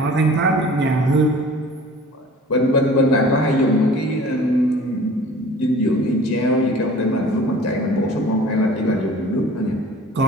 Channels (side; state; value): both; normal; correlation 0.46